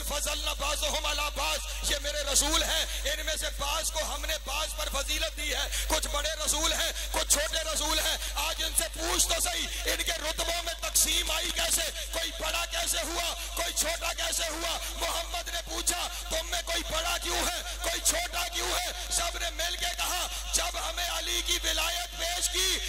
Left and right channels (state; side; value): identical; both; correlation 1.00